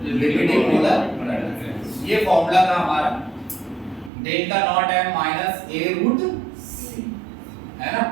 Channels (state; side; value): drops out; left; at 4.1 s